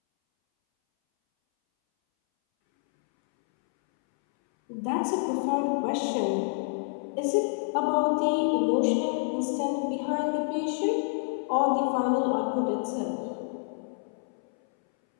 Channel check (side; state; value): right; silent; 59 dB below the other